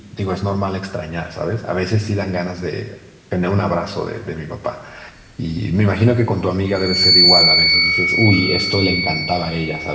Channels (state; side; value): identical; both; correlation 1.00